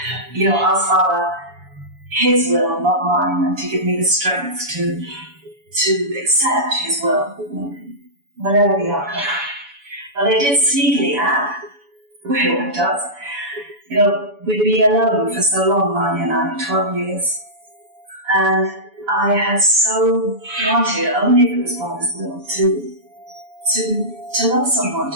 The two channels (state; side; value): late; left; 7.0 ms